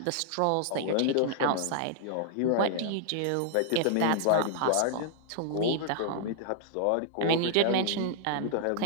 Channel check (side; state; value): both; different; correlation -0.01